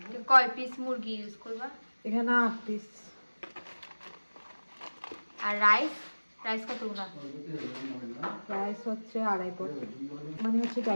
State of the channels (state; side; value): inverted; both; correlation -1.00